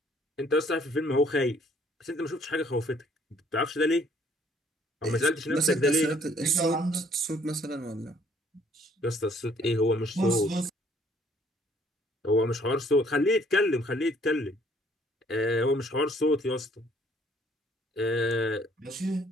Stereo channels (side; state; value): both; normal; correlation 0.61